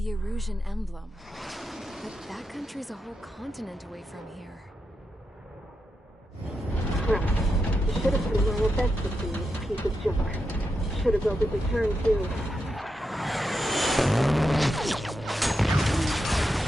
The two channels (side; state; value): both; normal; correlation 0.86